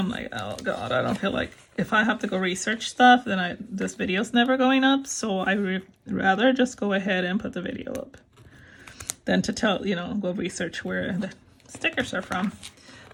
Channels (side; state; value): both; identical; correlation 1.00